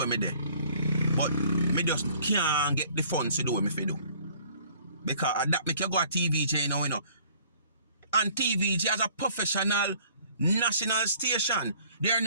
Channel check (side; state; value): both; inverted; correlation -0.55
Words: me do. But me just can't get the funds to do what me fi do. Because that make you go to TVJ now, you know. And TVJ as a professional national station, they're